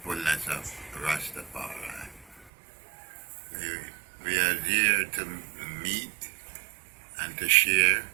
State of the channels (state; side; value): drops out; left; at 2.5 s